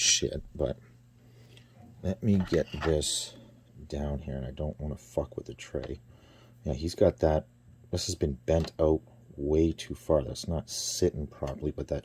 but let me get this down here, and I don't want to fuck with the tray. Yeah, he's got that. This has been bent out way too far. That's not sitting properly, but that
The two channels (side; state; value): both; identical; correlation 1.00